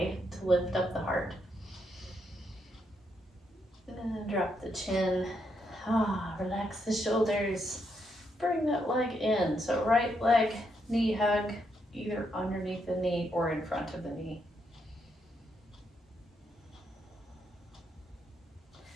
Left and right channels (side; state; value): both; normal; correlation 0.78